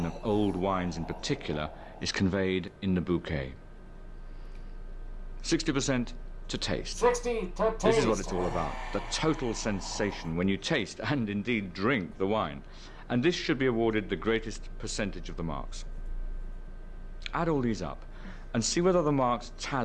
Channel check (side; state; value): both; identical; correlation 1.00